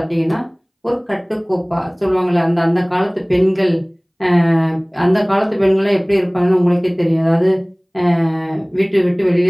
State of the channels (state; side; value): identical; both; correlation 1.00